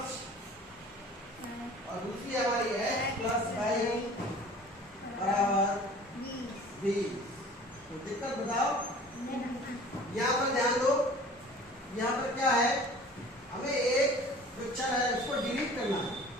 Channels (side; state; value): both; normal; correlation 0.46